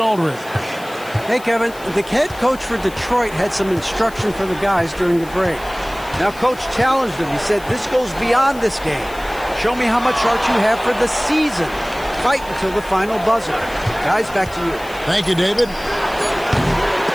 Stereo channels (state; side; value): noise; left; hiss, 20 dB below the sound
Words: Aldridge. Hey, Kevin, the head coach for Detroit had some instruction for the guys during the break. Now, Coach challenged them. He said, this goes beyond this game. Show me how much heart you have for the season. Fight until the final buzzer. Guys, back to you. Thank you, David.